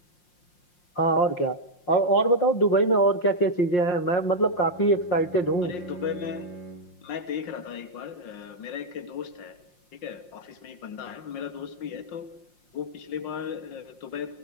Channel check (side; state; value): right; late; 5.6 ms